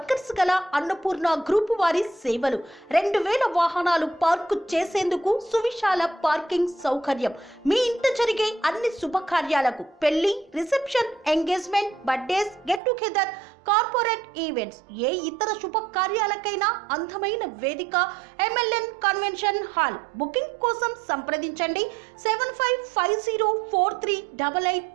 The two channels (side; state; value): left; drops out; at 12.8 s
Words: గల అన్నపూర్ణ గ్రూప్ వారి సేవలు. 2000 వాహనాలు పార్కు చేసేందుకు సువిశాల పార్కింగ్ సౌకర్యం. మీ ఇంట జరిగే అన్ని శుభకార్యాలకు, పెళ్లి, reception, engagement, birthdays, get together, corporate events, ఏ ఇతర శుభకార్యాలకైనా అందమైన వేదిక MLN కన్వెన్షన్ హాల్. బుకింగ్ కోసం సంప్రదించండి